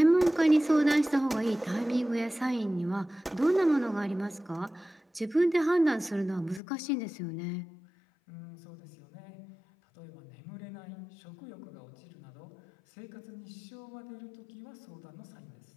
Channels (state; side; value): drops out; right; at 6.6 s